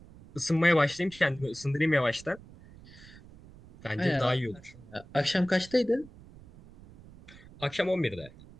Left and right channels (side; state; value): right; noise; rumble, 21 dB below the sound